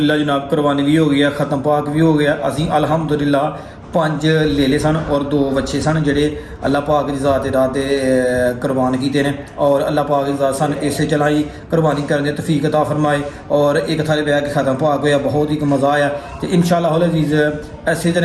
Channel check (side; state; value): both; identical; correlation 1.00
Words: जनाब कुरबानी भी हो गई है, ख़त्म पाक भी हो गया। असी अल्हम्दुलिल्लाह 5 ले ले सन और 2 बच्चे सन जेह्ड़े अल्लाह पाक की ज़ात दे राह ते कुरबान कीते ने और अल्लाह पाक की ज़ात सन इसे चलाई कुरबानी करने तौफीक अता फरमाए और एक थाले बैठ के ख़त्म पाक होया, बहुत ही मज़ा आया। तो इंशाअल्लाह अज़ीज़ ऐसे